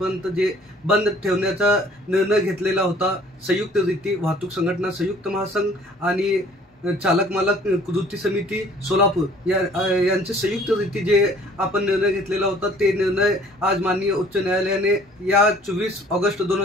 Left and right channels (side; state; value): both; normal; correlation 0.54